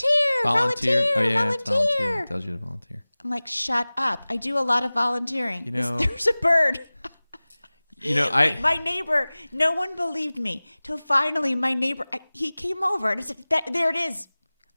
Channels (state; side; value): inverted; both; correlation -0.99